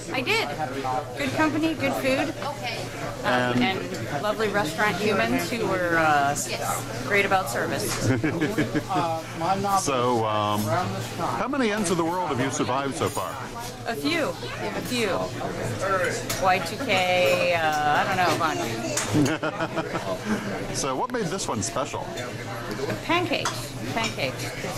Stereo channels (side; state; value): both; identical; correlation 1.00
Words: I did. Good company, good food, and lovely restaurant humans who were great about service. So, how many ends of the world have you survived so far? A few. Y2K, I don't know, a bunch. So what made this one special? Pancakes, because,